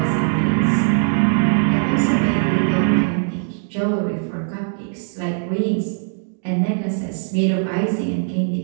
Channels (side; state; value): left; silent; digital silence